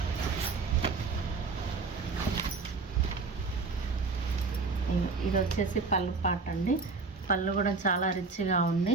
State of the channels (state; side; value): quieter; left; 4.3 dB